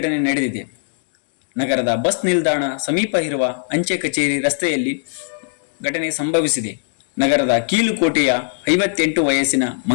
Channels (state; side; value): silent; right; digital silence